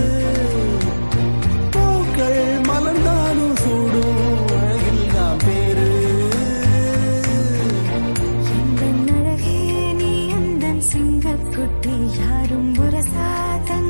பூக்கள் மலர்ந்தாலும் சூடும் அழகில் தான் பேரு எந்தன் அழகே நீ எந்தன் சிங்கக்குட்டி, யாரும் புரசா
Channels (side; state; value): both; inverted; correlation -1.00